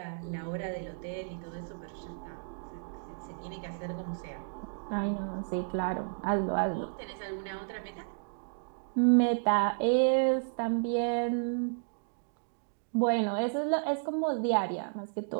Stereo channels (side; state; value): left; silent; digital silence